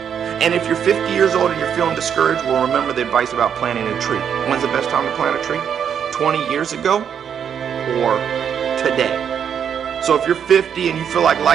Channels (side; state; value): left; quieter; 8.1 dB